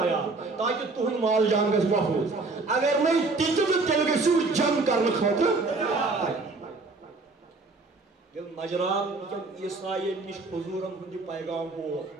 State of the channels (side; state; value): left; quieter; 3.7 dB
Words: تاکہ تہند مال جان گژھِ محفوظ اگر نہیں تیل گژھو جنگ کرنے خاطر یل نجران عیسائین نش حضورن ہند پیغام